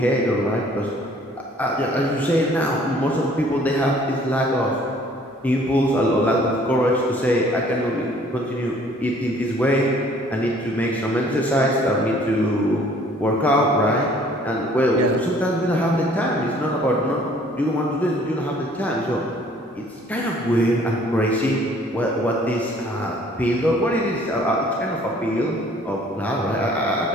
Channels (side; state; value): both; normal; correlation 0.56